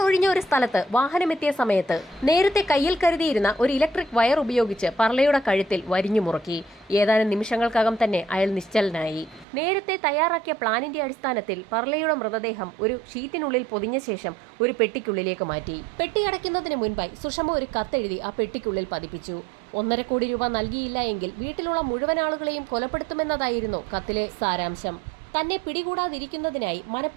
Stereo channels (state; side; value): drops out; left; at 9.5 s